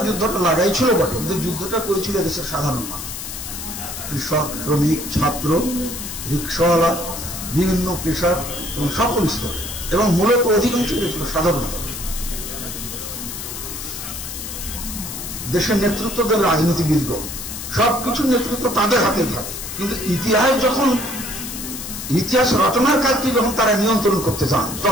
যুদ্ধটা লাগাই ছিল বটে, কিন্তু যুদ্ধটা করেছিল দেশের সাধারণ মানুষ, কৃষক, শ্রমিক, ছাত্র, রিক্সাওয়ালা, বিভিন্ন পেশার এবং সকল স্তরে, এবং মূলত অধিকাংশ ছিল সাধারণ মানুষ। দেশের নেতৃত্বদের রাজনীতিবিদগণ সবকিছুর নেতৃত্ব তাদের হাতে থাকে, কিন্তু ইতিহাস রচনার কাজটি যখন তারা নিয়ন্ত্রণ করতে চান,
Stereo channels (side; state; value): left; noise; hiss, 8 dB below the sound